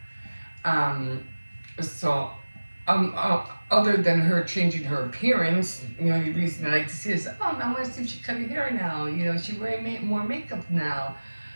Um, so other than her changing her appearance, the reason I like to see is, oh, I want to see if she cut her hair now. She wearing more makeup now.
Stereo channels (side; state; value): both; inverted; correlation -1.00